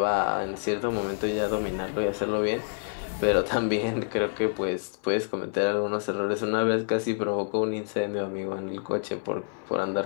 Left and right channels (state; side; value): silent; right; digital silence